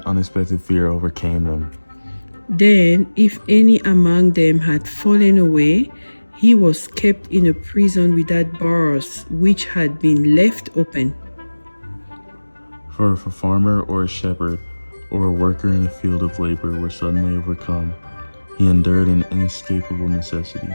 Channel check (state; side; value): inverted; both; correlation -1.00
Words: unexpected fear overcame them. Then, if any among them had fallen away, he was kept in a prison without bars, which had been left open. For if a farmer or a shepherd or a worker in a field of labor were suddenly overcome, he endured an inescapable necessity.